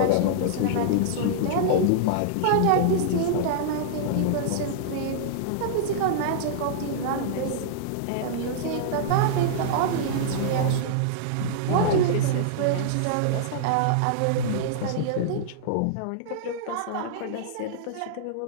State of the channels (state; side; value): different; both; correlation -0.02